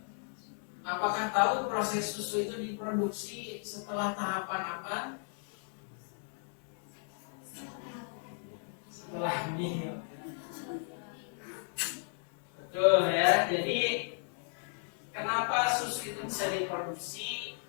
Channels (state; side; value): silent; right; 55 dB below the other